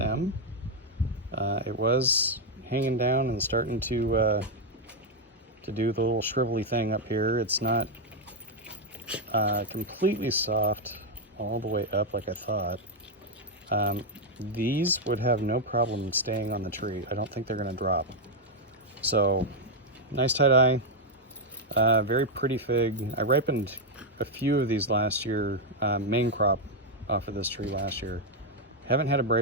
It was hanging down and starting to do the little shrivelly thing up here. It's not completely soft all the way up like I thought. These would have no problem staying on the tree. I don't think they're going to drop. So, nice tie-dye, very pretty fig. I ripened a few of these last year, main crop off of this tree last year. Haven't had a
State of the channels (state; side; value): normal; both; correlation 0.01